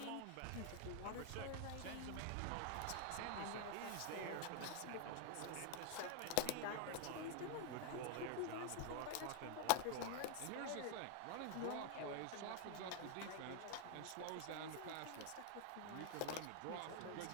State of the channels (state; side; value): different; both; correlation 0.00